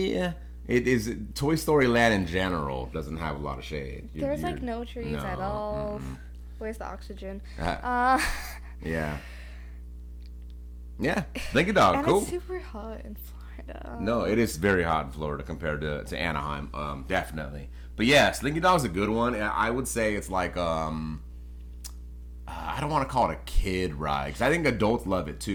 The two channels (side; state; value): both; identical; correlation 1.00